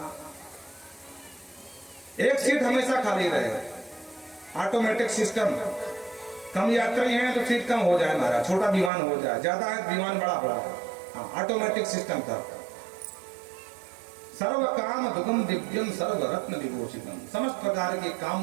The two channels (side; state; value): left; drops out; at 8.9 s